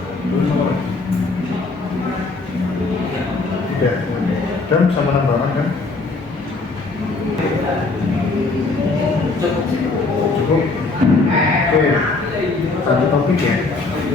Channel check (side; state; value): right; quieter; 3.6 dB